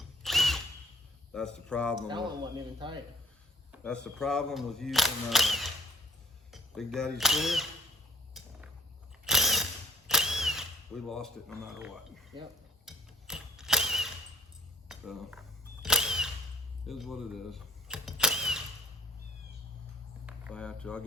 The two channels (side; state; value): both; normal; correlation 0.57